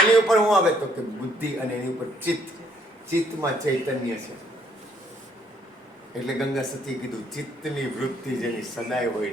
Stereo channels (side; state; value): both; normal; correlation 0.66